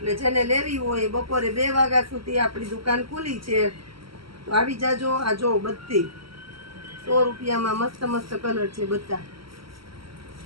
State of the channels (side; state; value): left; late; 0.75 ms